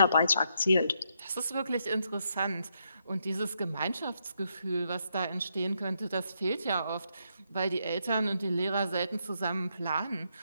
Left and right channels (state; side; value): inverted; both; correlation -0.78